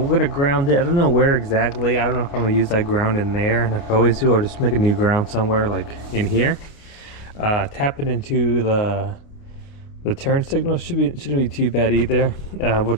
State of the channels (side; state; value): right; late; 28 ms